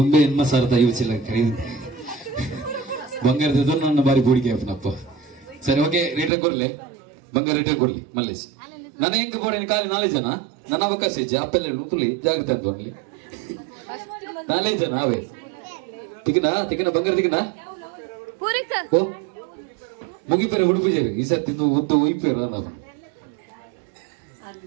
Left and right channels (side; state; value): left; drops out; at 6.3 s